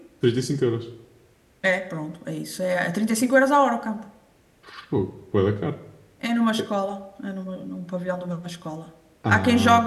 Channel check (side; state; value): both; identical; correlation 1.00